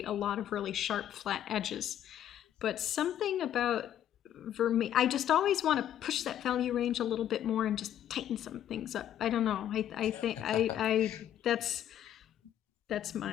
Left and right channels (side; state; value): right; quieter; 10.9 dB